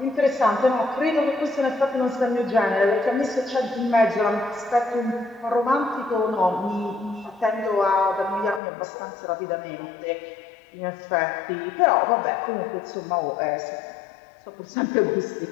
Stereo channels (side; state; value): right; drops out; at 8.6 s